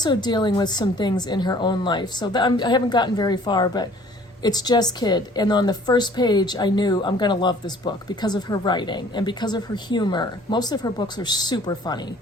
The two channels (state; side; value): normal; both; correlation 0.53